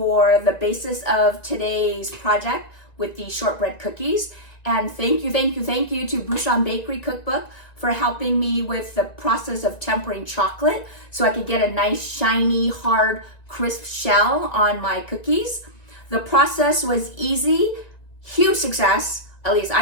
the basis of today's project with the shortbread cookies. And thank you to Bouchon Bakery Cookbook for helping me with the process of tempering chocolate so I could get a nice, shiny, hard, crisp shell on my cookies. The process was easy, huge success. At least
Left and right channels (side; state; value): right; late; 1.9 ms